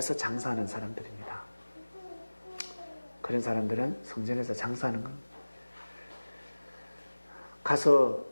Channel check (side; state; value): both; inverted; correlation -1.00